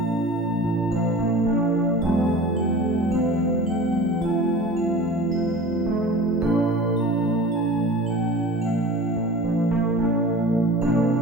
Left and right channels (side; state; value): both; normal; correlation 0.39